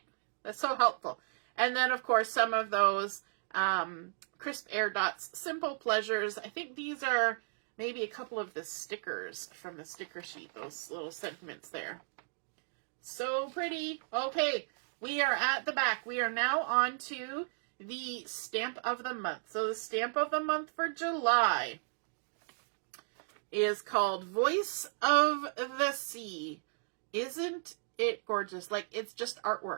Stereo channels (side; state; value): left; silent; digital silence